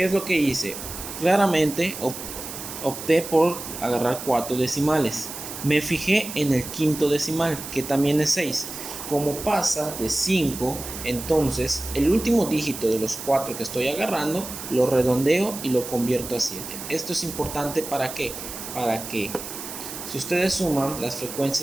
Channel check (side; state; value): right; noise; hiss, 9 dB below the sound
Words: es lo que hice? Claramente opté por agarrar 4 decimales. Me fijé en el quinto decimal, que también es 6. Como pasa de 5, entonces el último dígito de los 4 que estoy agarrando lo redondeo y lo convierto a 7. Esto es importante ¿para qué? Para que si ustedes suman las